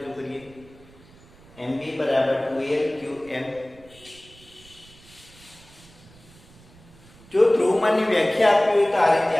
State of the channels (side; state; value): right; noise; rumble, 25 dB below the sound